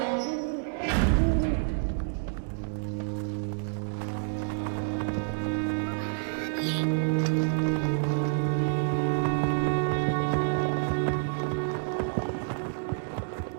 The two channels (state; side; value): silent; left; digital silence